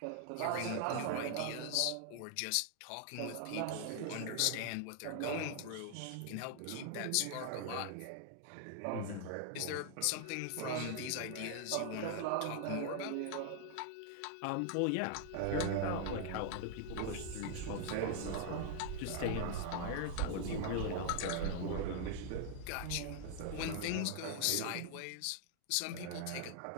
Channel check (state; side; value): different; both; correlation 0.00